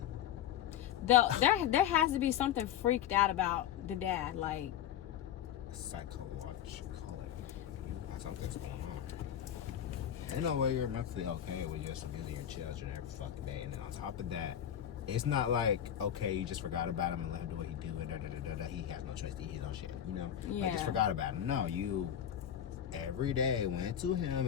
There has to be something freaked out about the dad, like psychologically. Something's going on. Ain't no way you're mentally okay with just abusing your children every fucking day. And then on top of that, it's not like, okay, you just forgot about him and let him do what he do and he has no choice to eat his own shit, you know? Yeah. Like, just forgot about him. No, you every day went to him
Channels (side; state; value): right; quieter; 10.3 dB